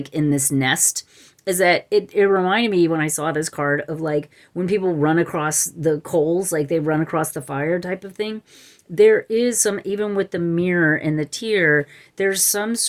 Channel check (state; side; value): identical; both; correlation 1.00